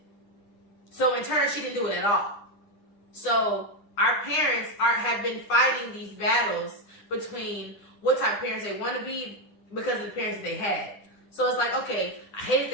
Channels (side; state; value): right; late; 9.9 ms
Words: So in turn, she didn't do it at all. So our parents have been fighting these battles between what type of parents they want to be because of the parents that they had. So it's like, okay, I hated